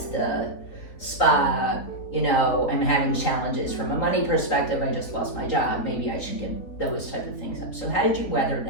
the spa. I'm having challenges from a money perspective. I just lost my job. Maybe I should give those type of things up. So how did you weather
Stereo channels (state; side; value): late; right; 4.0 ms